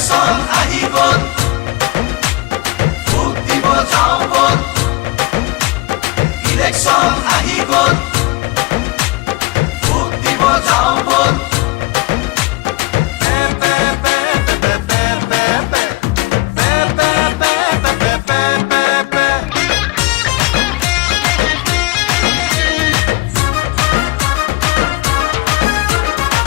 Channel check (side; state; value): right; quieter; 22.7 dB